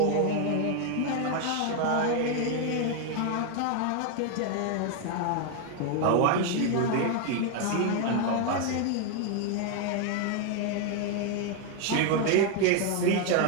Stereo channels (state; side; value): different; both; correlation 0.01